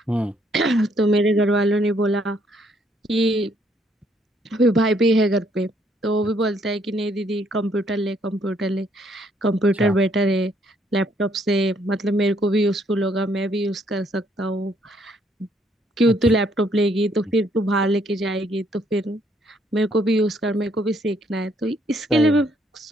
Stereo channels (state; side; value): normal; both; correlation 0.68